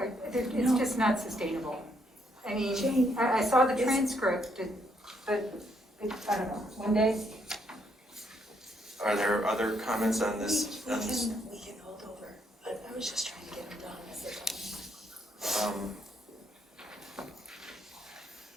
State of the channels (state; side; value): normal; both; correlation 0.73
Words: it's just not sustainable. I mean, I saw the transcript, but I don't know, one day? Are there other comments on this? We can hold over, but I was just trying to get them done.